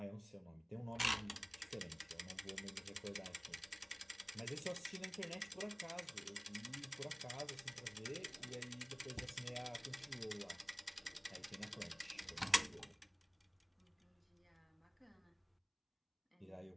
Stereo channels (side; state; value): both; identical; correlation 1.00